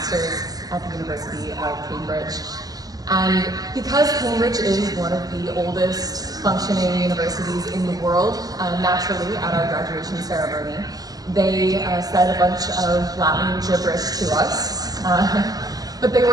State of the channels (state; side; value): late; left; 0.18 ms